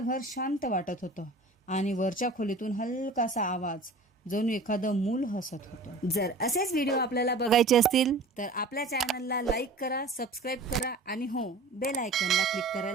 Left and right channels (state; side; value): quieter; left; 3.0 dB